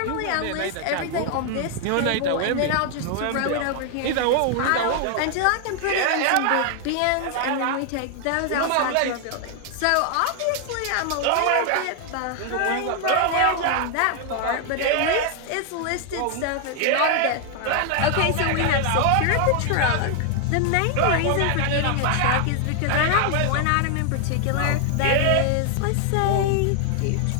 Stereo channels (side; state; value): both; different; correlation 0.00